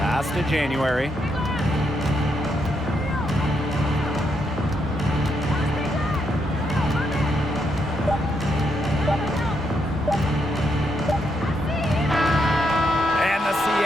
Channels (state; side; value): normal; both; correlation 0.79